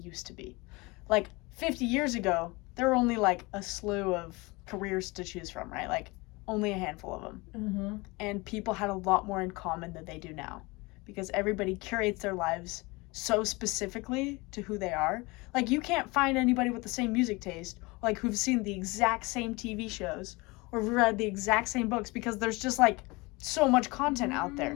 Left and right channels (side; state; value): right; quieter; 24.7 dB